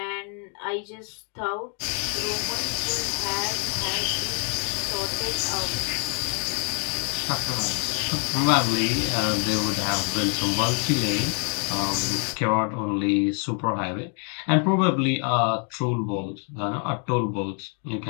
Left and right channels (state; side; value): quieter; right; 37.6 dB